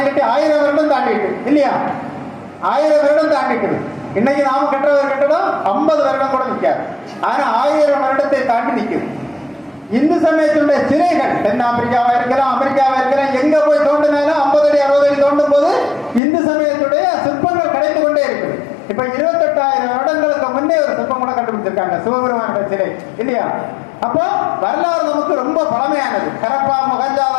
கட்டி 1000 வருடம் தாண்டிட்டு இல்லையா? 1000 வருடம் தாண்டிட்டு. இன்னைக்கு நாம கட்டுற ஒரு கட்டடம் 50 வருடம் கூட நிற்காது. ஆனா 1000 வருடத்தை தாண்டி நிற்குது. இந்து சமயத்தினுடைய சிலைகள் தென் ஆப்பிரிக்காவா இருக்கலாம், அமெரிக்காவா இருக்கலாம், எங்க போய் தோண்டினாலும் 50 அடி 60 அடி தோண்டும் போது இந்து சமயத்துடைய சிற்பங்கள் கிடைத்து கொண்டே இருக்குது. இப்ப 28,000 வருடங்களுக்கு முன்னே ஒரு சிற்பம் கூட கண்டுபிடிச்சிருக்காங்க, சிவபெருமானுடைய சிலை இல்லையா? அப்போ வரலாறு நமக்கு ரொம்ப பழமையானது. ஹரப்பா,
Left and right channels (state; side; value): drops out; right; at 16.2 s